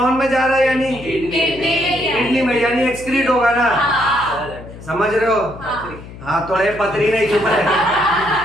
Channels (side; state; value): left; noise; hum, 15 dB below the sound